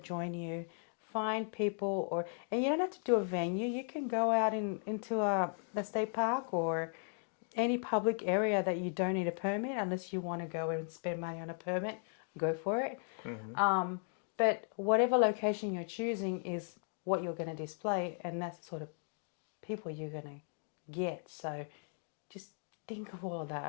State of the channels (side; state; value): right; silent; 53 dB below the other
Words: you. Find people and you don't have to do a venue. You can go out into a state park or any public area that you don't need a permit unless you want to go and spend money on a permit, go for it. But whatever location you're choosing is what you're going to display, and that's the sort of people you're going to get. So just think of all of that.